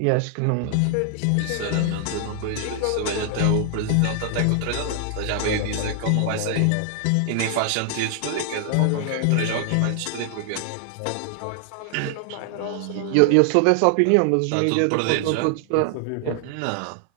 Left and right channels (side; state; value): both; different; correlation 0.00